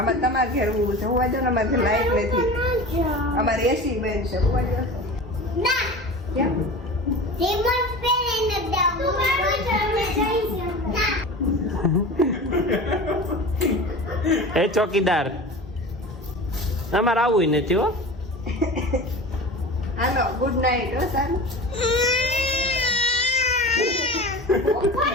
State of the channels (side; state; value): both; normal; correlation 0.33